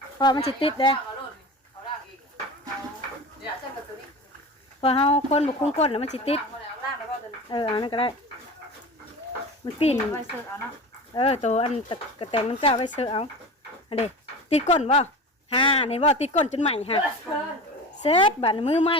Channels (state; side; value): normal; both; correlation 0.32